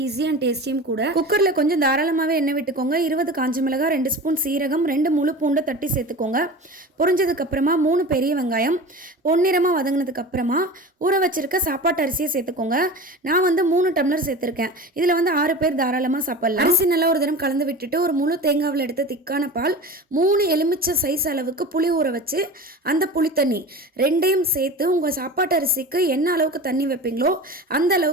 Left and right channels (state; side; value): normal; both; correlation 0.33